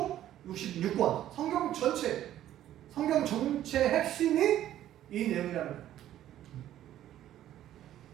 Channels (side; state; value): left; quieter; 12.4 dB